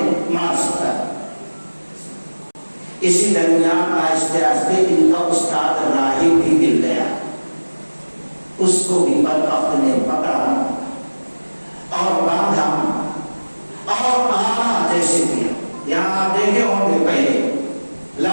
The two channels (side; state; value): both; inverted; correlation -1.00